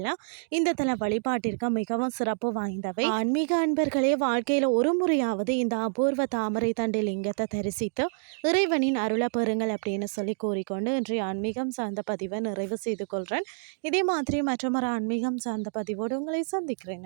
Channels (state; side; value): silent; left; digital silence